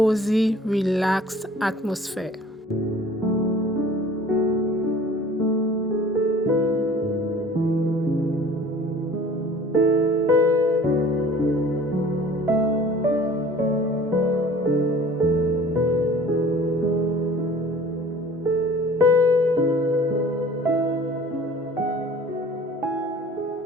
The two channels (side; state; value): both; normal; correlation 0.47